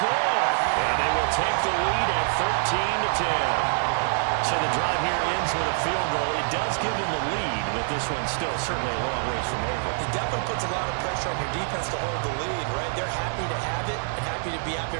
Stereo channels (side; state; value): left; silent; digital silence